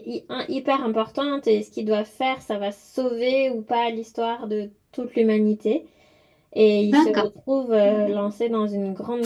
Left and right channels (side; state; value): both; identical; correlation 1.00